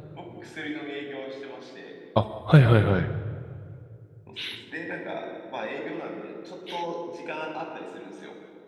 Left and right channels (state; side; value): identical; both; correlation 1.00